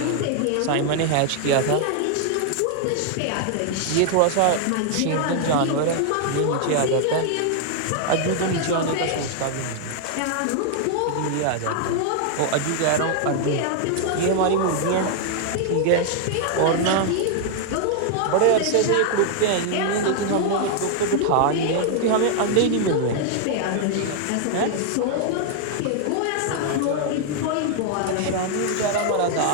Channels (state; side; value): different; both; correlation 0.00